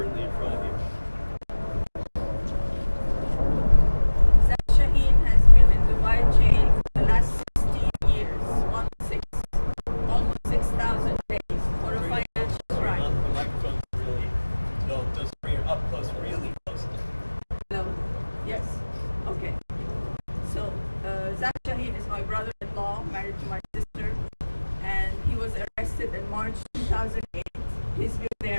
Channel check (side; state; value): both; inverted; correlation -1.00